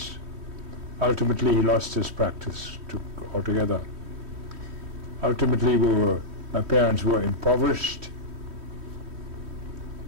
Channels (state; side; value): late; left; 3.1 ms